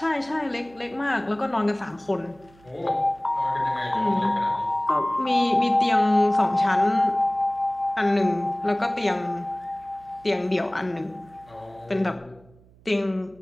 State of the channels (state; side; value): noise; right; hum, 27 dB below the sound